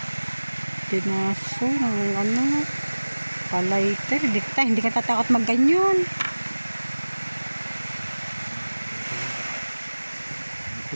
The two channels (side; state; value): both; inverted; correlation -1.00